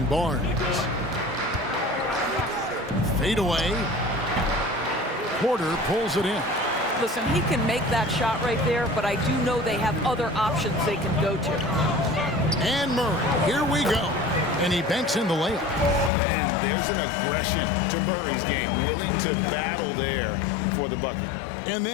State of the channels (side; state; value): right; drops out; at 16.1 s